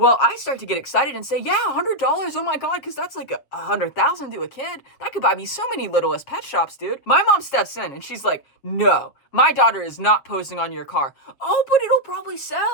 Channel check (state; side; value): late; right; 7.6 ms